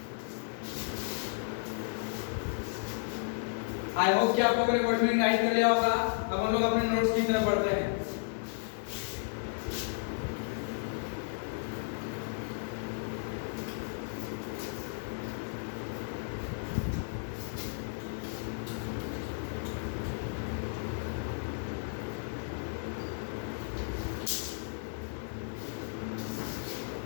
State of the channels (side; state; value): right; silent; digital silence